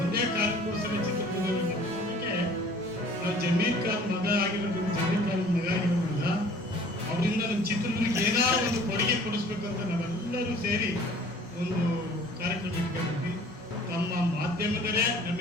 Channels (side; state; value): both; normal; correlation 0.51